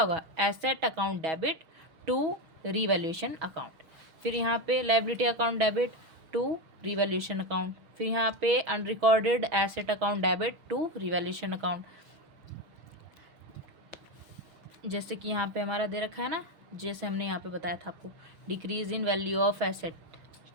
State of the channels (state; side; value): late; left; 6.2 ms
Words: होगा, asset account debit to revaluation account. फिर यहाँ पे liability account debit to revaluation account. फिर यहाँ पे unrecorded asset account debit to revaluation account. जैसे कि यहाँ पे हमारा दे रखा है ना, जैसे हमने यहाँ पे बताया था आपको, decrease in value of asset.